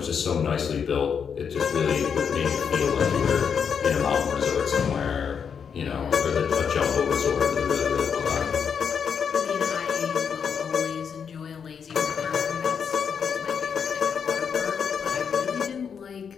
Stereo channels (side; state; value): right; quieter; 6.9 dB